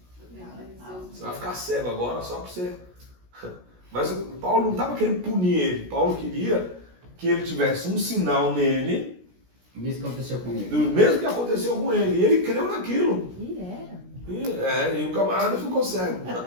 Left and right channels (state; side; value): late; left; 16 ms